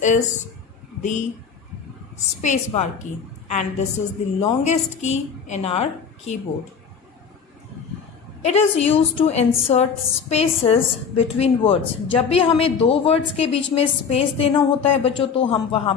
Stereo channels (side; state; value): right; quieter; 6.3 dB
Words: is the space bar key and this is the longest key in our keyboard. It is used to insert spaces between words. जब भी हमें दो words के बीच में space देना होता है बच्चों तो हम वहाँ